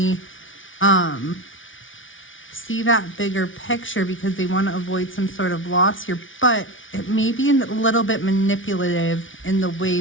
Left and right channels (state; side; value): late; right; 0.57 ms